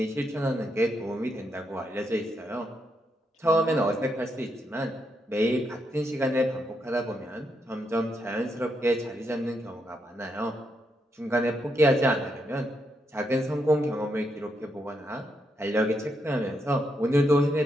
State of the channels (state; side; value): normal; both; correlation 0.80